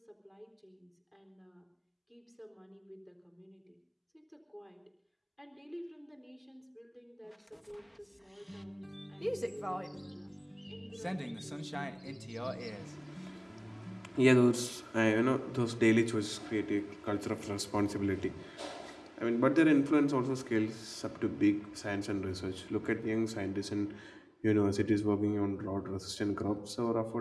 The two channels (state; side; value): identical; both; correlation 1.00